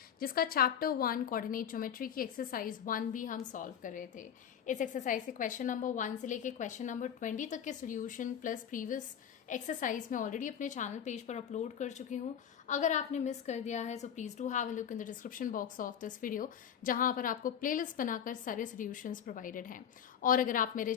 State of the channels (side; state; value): right; quieter; 8.7 dB